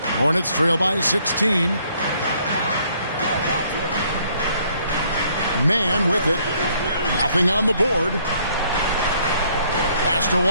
Hornets trail by 16. Man with it. Nothing on the board. Pass to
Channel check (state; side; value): inverted; both; correlation -0.65